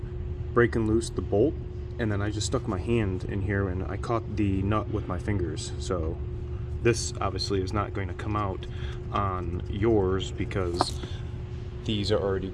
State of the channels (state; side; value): identical; both; correlation 1.00